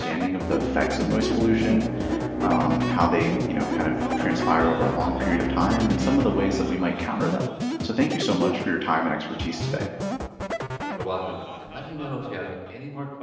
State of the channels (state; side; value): identical; both; correlation 1.00